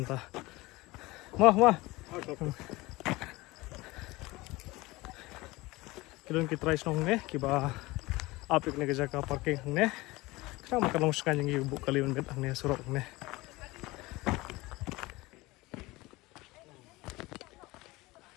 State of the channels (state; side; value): quieter; right; 21.2 dB